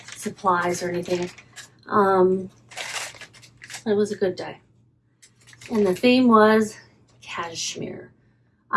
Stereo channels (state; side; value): identical; both; correlation 1.00